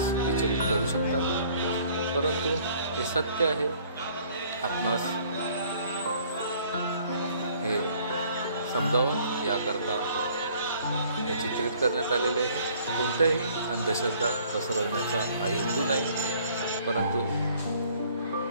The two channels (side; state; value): both; inverted; correlation -0.58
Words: विचलित करू शकतात, परंतु हे सत्य आहे. आपणास हे समजावून याकरता हे चित्रित करण्यात आलेले आहे. कोणत्याही अंधश्रद्धा पसरवण्याचा हा हेतू नाही, परंतु